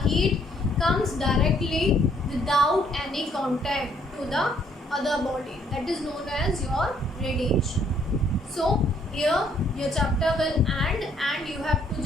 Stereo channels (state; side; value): normal; both; correlation 0.66